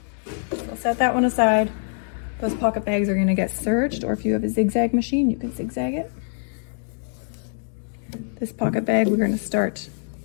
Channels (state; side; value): silent; right; digital silence